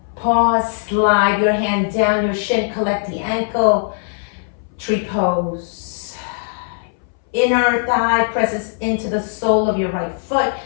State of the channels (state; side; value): silent; right; 63 dB below the other